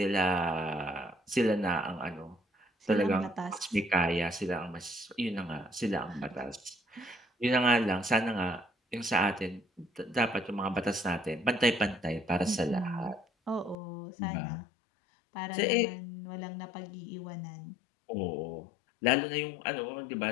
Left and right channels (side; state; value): right; drops out; at 13.8 s